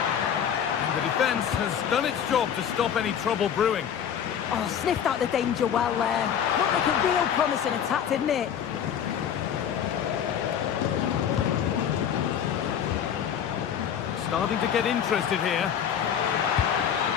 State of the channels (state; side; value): quieter; right; 8.8 dB